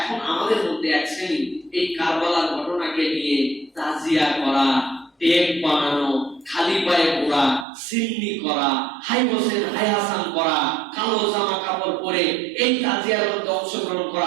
আমাদের মধ্যে এক শ্রেণী এই কারবালার ঘটনাকে নিয়ে তাজিয়া করা, টেপ বানানো, খালি পায়ে ঘোরা, সিন্নি করা, হাই হোসেন হাই হাসান করা, কালো জামা কাপড় পরে এই তাজিয়ার মধ্যে অংশগ্রহণ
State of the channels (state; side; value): drops out; left; at 7.7 s